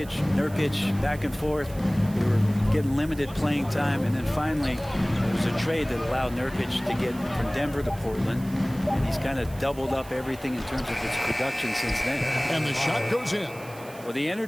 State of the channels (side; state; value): right; noise; hiss, 20 dB below the sound